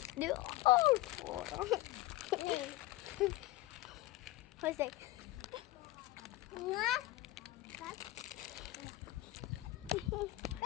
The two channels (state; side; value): quieter; right; 17.6 dB